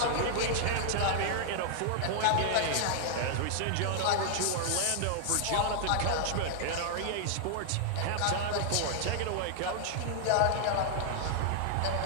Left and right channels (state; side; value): different; both; correlation -0.01